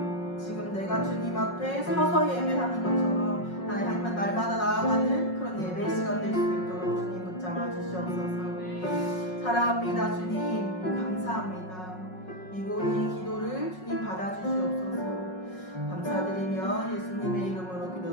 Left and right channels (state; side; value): late; right; 5.5 ms